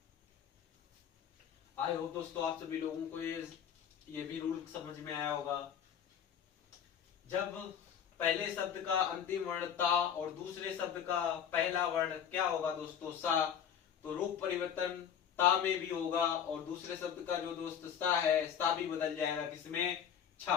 आई होप दोस्तों आप सभी लोगों को ये भी रूल समझ में आया होगा। जब पहले शब्द का अंतिम वर्ण ता और दूसरे शब्द का पहला वर्ण क्या होगा दोस्तों, सा, तो रूप परिवर्तन ता में भी होगा और दूसरे शब्द का जो दोस्त सा है, सा भी बदल जाएगा किसमें,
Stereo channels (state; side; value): quieter; right; 8.5 dB